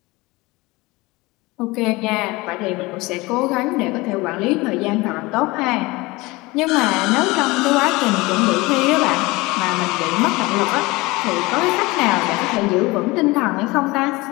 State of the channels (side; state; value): right; quieter; 22.4 dB